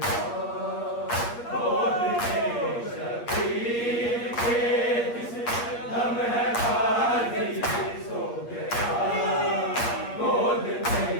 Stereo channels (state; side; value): late; right; 8.5 ms